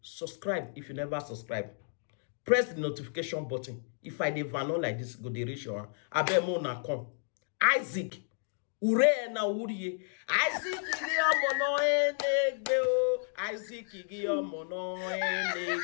subscribe if you never subscribe. Press the notification button. If I dey vano like this, go dey reach your hand. Abemo na come. Isaac, ure na uriye. Isaac igi omo no enegbe o. Isaac igi omo no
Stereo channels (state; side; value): silent; right; digital silence